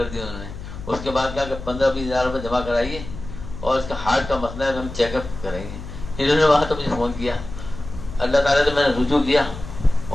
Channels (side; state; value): left; noise; hum, 11 dB below the sound